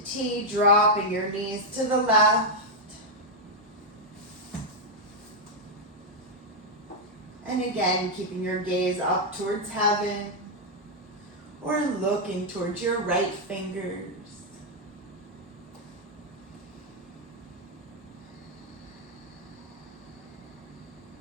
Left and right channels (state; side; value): normal; both; correlation -0.01